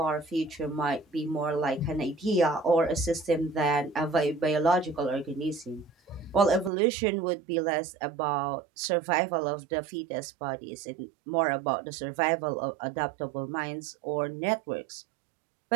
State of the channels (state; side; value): drops out; left; at 6.7 s